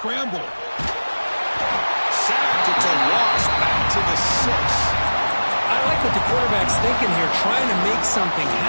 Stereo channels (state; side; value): inverted; both; correlation -1.00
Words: Sacked. It's a loss. Back to the 6. I like what the quarterback's thinking here, trying to make something